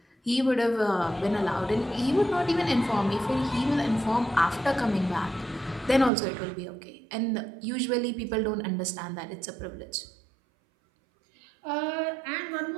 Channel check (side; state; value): left; drops out; at 6.1 s